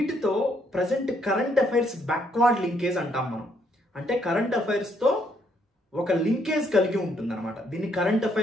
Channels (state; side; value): normal; both; correlation 0.71